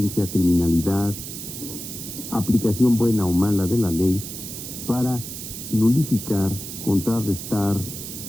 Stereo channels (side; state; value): right; noise; hiss, 9 dB below the sound